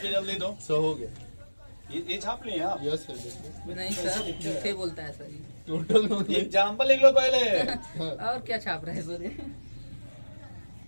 जल्दी दो। 100 हो गया। ये छाप लिए आप। यस सर देखिए नहीं सर, झूठे बोलता है सर ये। टोटल नोट एग्जाम्पल लिख लो पहले। और क्या छाप रहे हैं सर ये?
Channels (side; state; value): both; inverted; correlation -1.00